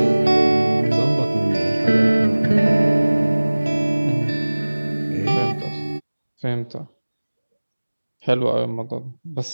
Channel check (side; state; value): both; inverted; correlation -1.00